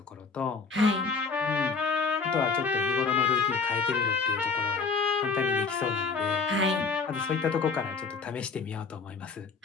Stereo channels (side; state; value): right; quieter; 4.9 dB